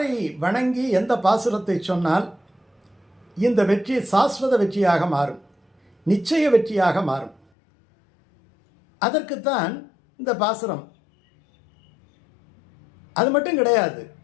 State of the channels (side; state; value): right; drops out; at 7.5 s